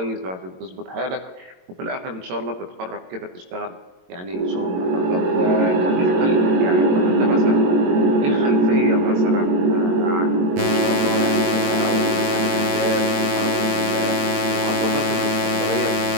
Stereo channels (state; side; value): late; left; 22 ms